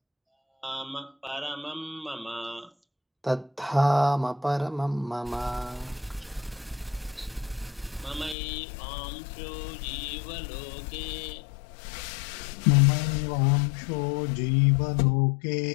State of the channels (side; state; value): right; drops out; at 8.3 s